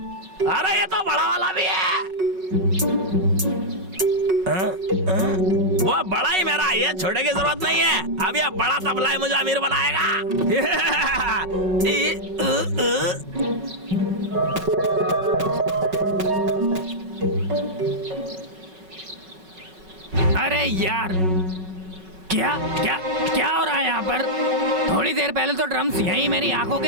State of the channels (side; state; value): left; late; 5.4 ms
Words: अरे ये तो बड़ा वाला भी है। वो बड़ा ही मेरा, ये छोटे की जरूरत नहीं है। अब ये बड़ा तबला ही मुझे अमीर बनाएगा। अरे यार, क्या क्या क्या हो रहा है यहाँ पर? थोड़ी देर पहले तो ड्रम्स यहीं मेरी आंखों